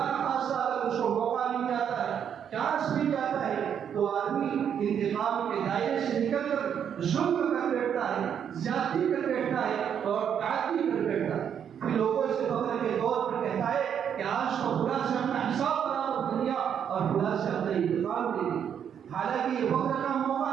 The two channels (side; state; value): left; quieter; 8.4 dB